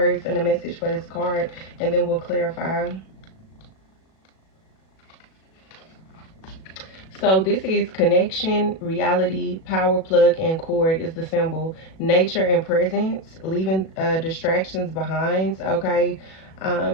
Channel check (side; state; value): right; late; 37 ms